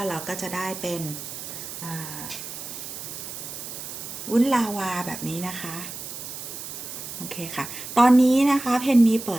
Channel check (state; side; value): noise; right; hiss, 9 dB below the sound